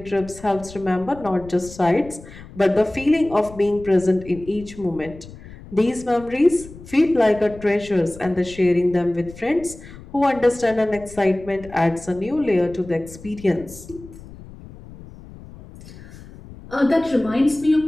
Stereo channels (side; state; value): left; noise; rumble, 18 dB below the sound